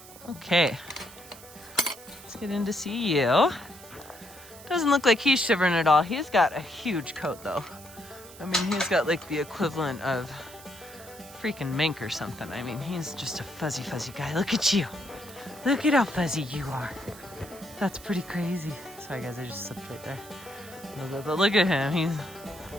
Okay. Let's get in to see you. Doesn't look like he's shivering at all. He's got a huge coat, though. I mean, he's got like the equivalent of freaking mink or something. I mean, he's just a fuzzy, fuzzy guy. Look at you. Look at how fuzzy you are. That's pretty crazy. Sorry, guys, I just slipped right there a little bit. But look at him. He's...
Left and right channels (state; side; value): noise; right; hiss, 18 dB below the sound